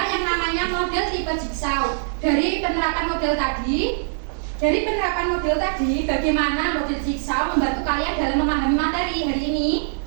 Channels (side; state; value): left; silent; digital silence